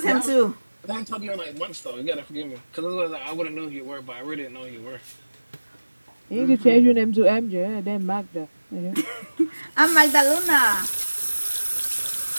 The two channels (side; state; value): both; inverted; correlation -1.00